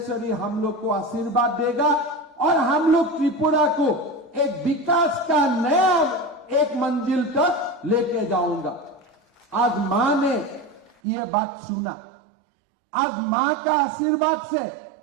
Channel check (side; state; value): left; drops out; at 10.9 s